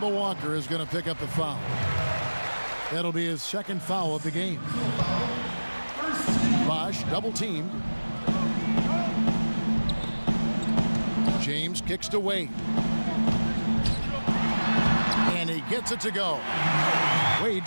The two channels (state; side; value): inverted; both; correlation -1.00